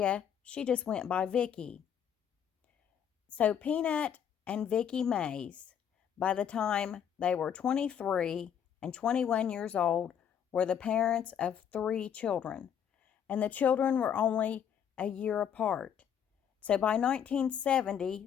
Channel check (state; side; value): quieter; right; 8.6 dB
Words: she just went by Vicky. So Peanut and Vicky Mays, by the time they were 23 and 21 years old, were the parents of 3 children, and the children were only a year apart. So by